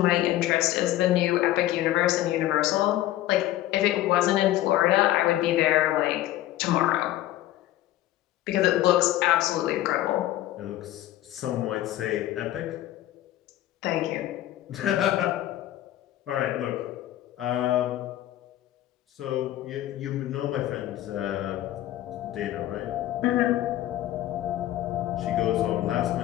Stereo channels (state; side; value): quieter; right; 14.4 dB